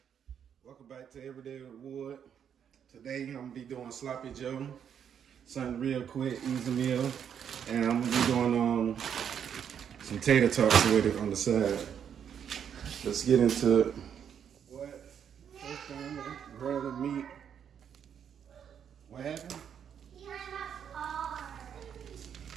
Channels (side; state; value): left; quieter; 8.3 dB